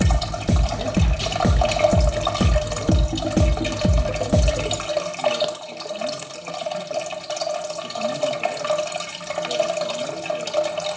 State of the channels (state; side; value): identical; both; correlation 1.00